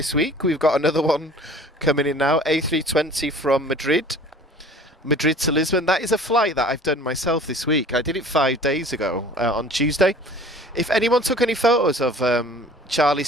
week. We've got another one coming in now, A320 from Madrid to Lisbon. That is a flight that I've done myself this week. I did it 5 days ago on Tuesday. If anyone took any photos of Charlie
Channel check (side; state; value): both; normal; correlation 0.47